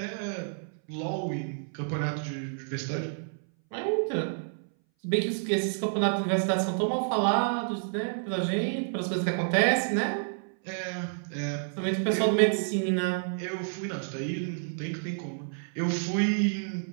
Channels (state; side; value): silent; left; 58 dB below the other